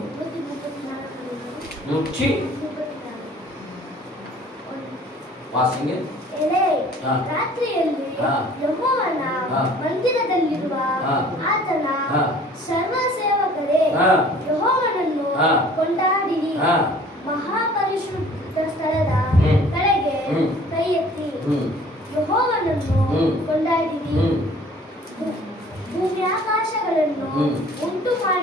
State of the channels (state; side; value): normal; both; correlation 0.51